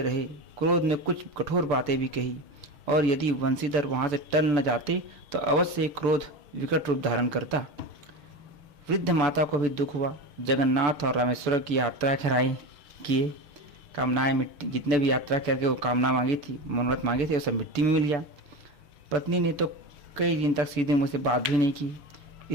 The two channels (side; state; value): left; late; 6.9 ms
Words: रहे। क्रोध में कुछ कठोर बातें भी कही और यदि वंशीधर वहां से टल न जाते तो अवश्य क्रोध विकट रूप धारण करता। वृद्ध माता को भी दुख हुआ। जगन्नाथ और रामेश्वर की यात्रा कराई किए, कामनाएं मिट्टी, जितने भी यात्रा करके वो कामना मांगी थी, मनोरथ मांगे थे, वो सब मिट्टी में मिल गया। पत्नी ने तो कई दिन तक सीधे मुझसे बात भी नहीं की।